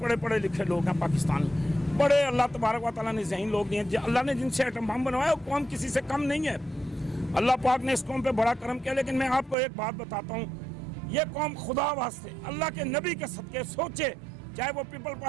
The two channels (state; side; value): drops out; left; at 9.6 s